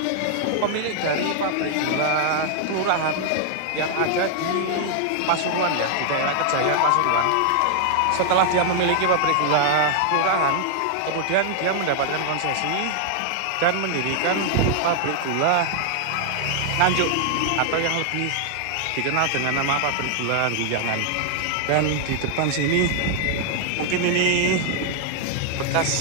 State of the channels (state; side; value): different; both; correlation 0.00